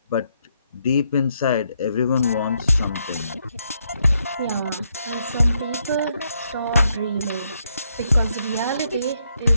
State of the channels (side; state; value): both; inverted; correlation -0.77